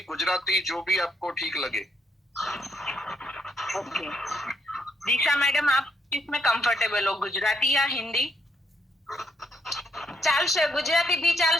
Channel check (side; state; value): both; normal; correlation 0.74